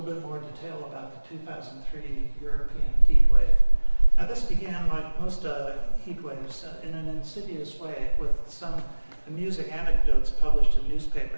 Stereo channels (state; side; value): inverted; both; correlation -1.00